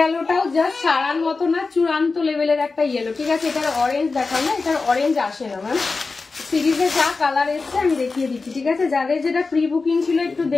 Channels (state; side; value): quieter; right; 4.1 dB